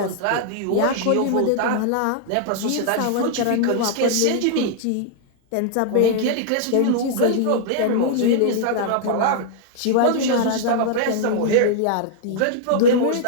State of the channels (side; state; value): both; different; correlation -0.01